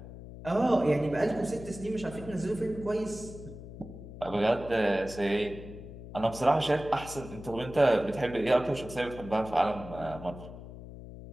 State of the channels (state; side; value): noise; left; hum, 13 dB below the sound